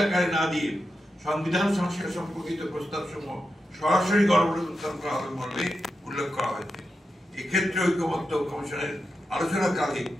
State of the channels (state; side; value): normal; both; correlation 0.88